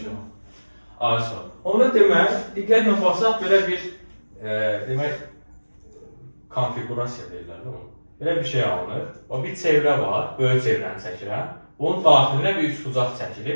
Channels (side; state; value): both; inverted; correlation -1.00